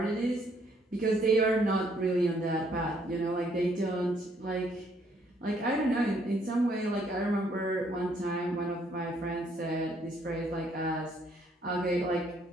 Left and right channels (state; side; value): normal; both; correlation 0.68